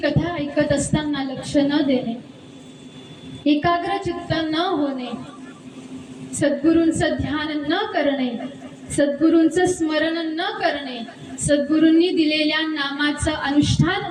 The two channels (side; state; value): both; identical; correlation 1.00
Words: ऐकत असताना लक्ष न देणे, एकाग्र चित्त न होणे, सद्गुरूंचं ध्यान न करणे, सद्गुरूंचं स्मरण न करणे, सद्गुरूंनी दिलेल्या नामाचं